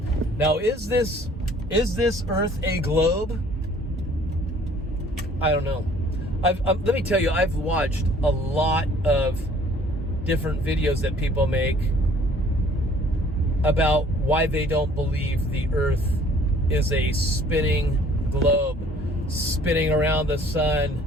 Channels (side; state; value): both; normal; correlation 0.55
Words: Now, is this earth a globe? I don't know. Let me tell you, I've watched a lot of different videos that people make about why they don't believe the earth is a spinning globe, spinning around the